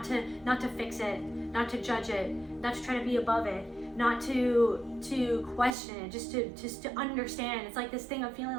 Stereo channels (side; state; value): left; drops out; at 5.8 s